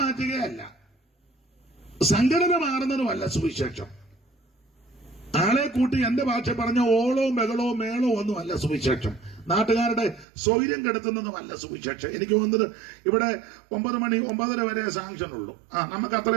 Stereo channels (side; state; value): left; drops out; at 10.2 s